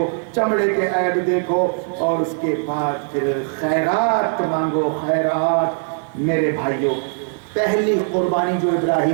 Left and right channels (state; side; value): silent; left; 65 dB below the other